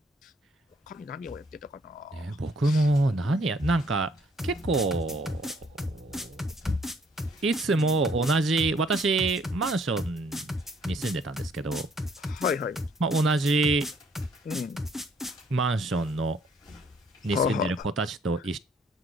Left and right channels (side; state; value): both; normal; correlation 0.64